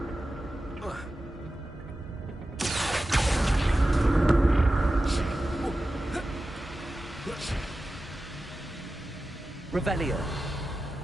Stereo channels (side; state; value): both; normal; correlation 0.93